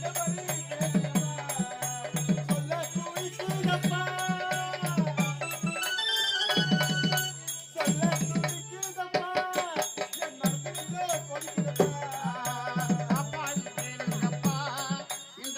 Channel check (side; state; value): both; identical; correlation 1.00